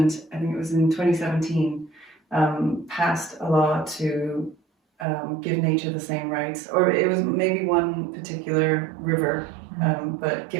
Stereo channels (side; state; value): left; drops out; at 5.1 s